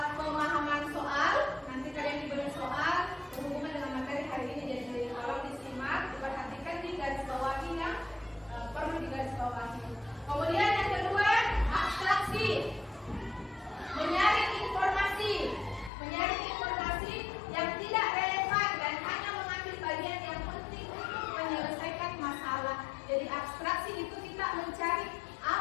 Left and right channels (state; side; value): drops out; right; at 15.9 s